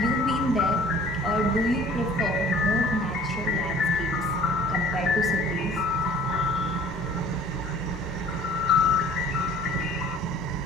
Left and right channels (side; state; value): both; normal; correlation 0.50